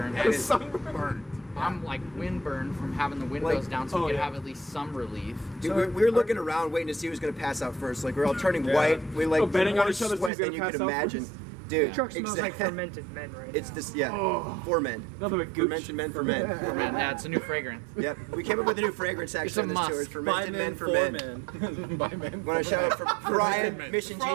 And it's burnt. I'm like windburned from having the windows Like- down, so we oh, could yeah. have at least some relief. Dude, we were looking around, waiting to see who was gonna pass out first. Like we're all turning white. We like betting on more each other sweat who's than gonna you pass could out imagine, first. dude. The truck smells like exact- fermented men right It's now. just 4 men. Nothing but gooch. Fermented men for men. Man, it's a new fragrance. Yep, we came up with a new fragrance It's a actually on this tour. must. It's fermented men for men. By men. Want to shout out for Brian, men. Mission G.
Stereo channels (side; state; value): left; drops out; at 10.3 s